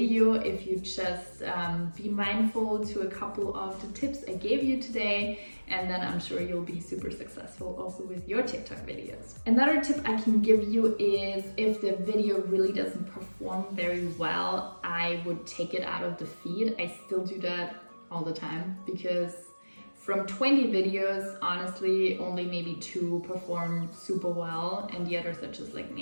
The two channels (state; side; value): inverted; both; correlation -1.00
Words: if you just be mindful to a couple of the tips I gave you today, and then I'm sure you'll be super successful also with your TikTok videos. Another tip I can give you is if the video really doesn't perform very well, I would take it out of the feed. I still do that all the time because from 20 videos, honestly, only maybe 2 perform super well and the others are just like